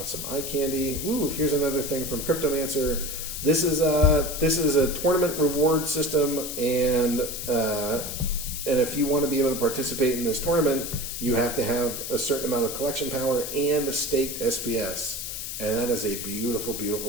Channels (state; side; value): noise; left; hiss, 6 dB below the sound